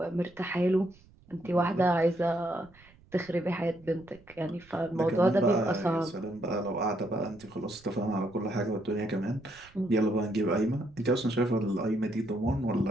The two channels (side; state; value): right; noise; rumble, 26 dB below the sound